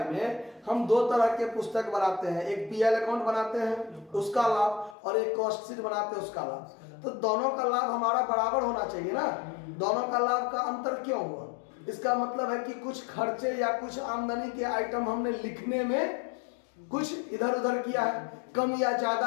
में हम 2 तरह के पुस्तक बनाते हैं, एक पीएल अकाउंट बनाते हैं उसका लाभ और एक कॉस्ट शीट बनाते हैं उसका लाभ। तो दोनों का लाभ हमारा बराबर होना चाहिए ना, दोनों का लाभ का अंतर क्यों हुआ? इसका मतलब है कि कुछ खर्चे या कुछ आमदनी के आइटम हमने लिखने में कुछ इधर उधर किया है, कम या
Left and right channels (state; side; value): drops out; right; at 5.0 s